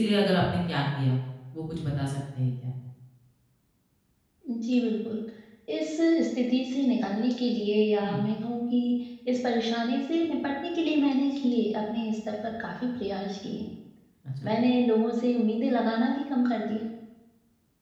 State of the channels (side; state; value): both; identical; correlation 1.00